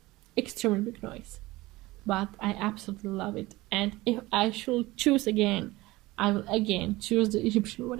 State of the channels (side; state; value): left; quieter; 19.8 dB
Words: Extremely big noise. But I absolutely love it. And if I should choose again, I will again choose the Egyptian